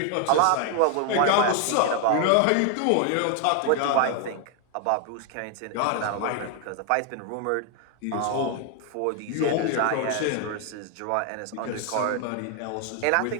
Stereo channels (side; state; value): both; different; correlation 0.00